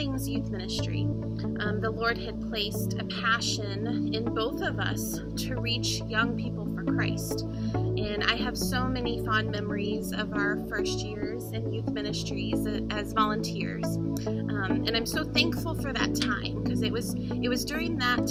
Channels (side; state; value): both; identical; correlation 1.00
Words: youth ministry. The Lord had placed a passion in both of us to reach young people for Christ. And I have so many fond memories of our first years in youth ministries as volunteers. And I'm so thankful for that time, because it was during that